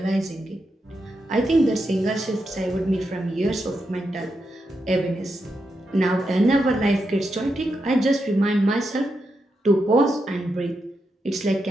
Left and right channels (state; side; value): normal; both; correlation 0.85